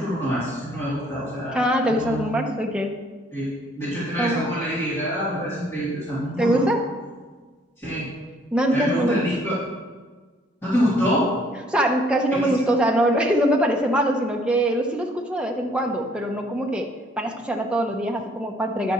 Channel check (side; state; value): both; normal; correlation 0.62